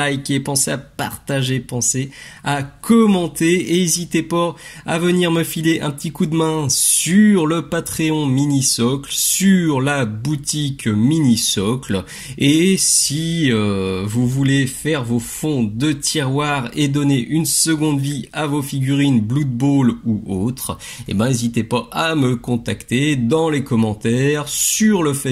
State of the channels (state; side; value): identical; both; correlation 1.00